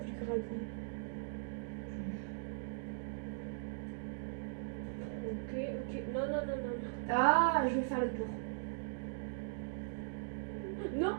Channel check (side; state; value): left; silent; digital silence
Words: du gravier. Ok, ok. Non, non, non, non. Ah, je vais faire le tour. Non,